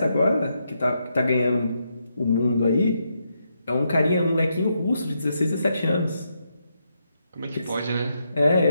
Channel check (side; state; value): both; inverted; correlation -0.81